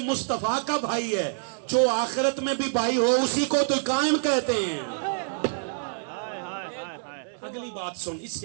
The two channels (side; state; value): left; silent; digital silence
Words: مصطفیٰ کا بھائی ہے. جو آخرت میں بھی بھائی ہو اسی کو تو قائم کہتے ہیں. ہائے ہائے ہائے ہائے. اگلی بات سن، اس